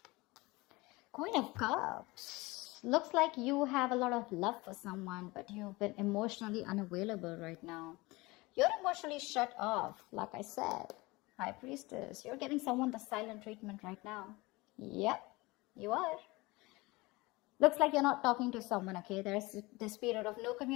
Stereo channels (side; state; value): right; quieter; 22.5 dB